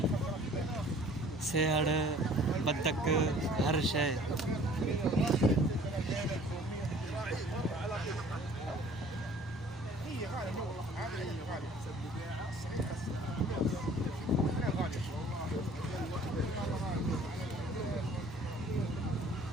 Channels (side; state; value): both; normal; correlation 0.52